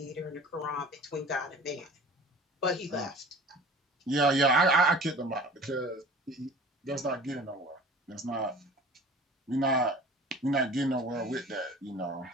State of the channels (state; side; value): normal; both; correlation 0.42